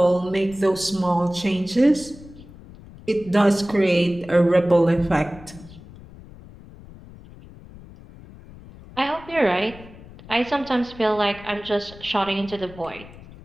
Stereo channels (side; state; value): left; noise; rumble, 19 dB below the sound